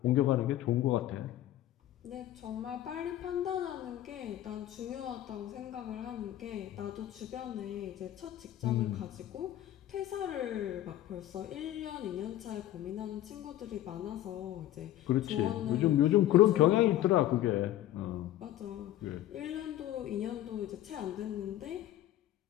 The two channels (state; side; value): quieter; right; 13.4 dB